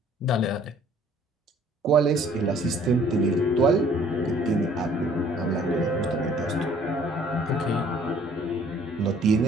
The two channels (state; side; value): normal; both; correlation 0.57